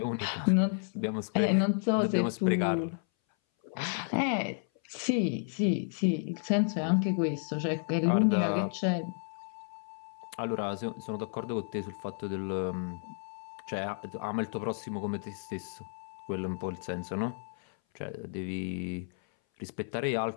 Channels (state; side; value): silent; right; 56 dB below the other